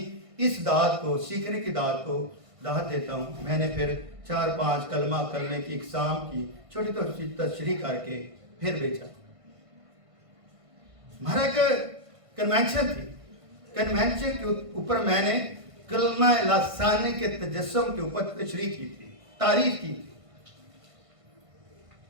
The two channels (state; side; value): late; left; 1.5 ms